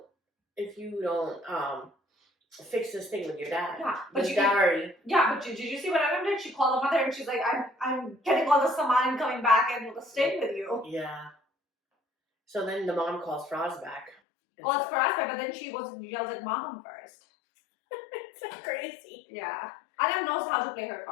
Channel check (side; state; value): right; drops out; at 14.2 s